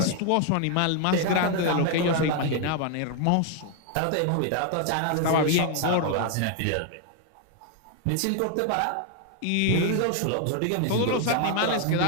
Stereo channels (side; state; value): both; different; correlation 0.00